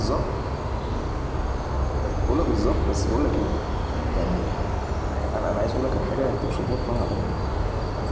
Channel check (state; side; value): identical; both; correlation 1.00